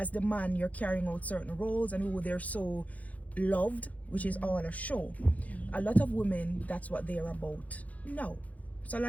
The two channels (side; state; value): right; late; 0.072 ms